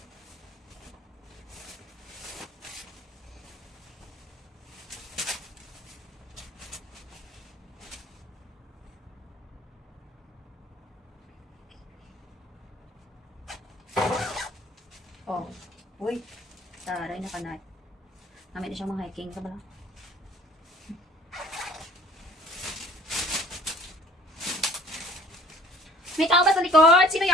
Oh. Uy. Taray na kanay. Namin na siyang mga hiking. Ito ba lang? May tao ba sa likod? Sino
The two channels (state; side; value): normal; both; correlation 0.52